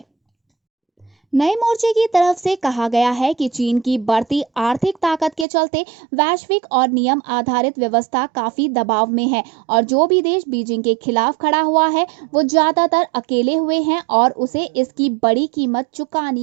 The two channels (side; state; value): left; drops out; at 5.5 s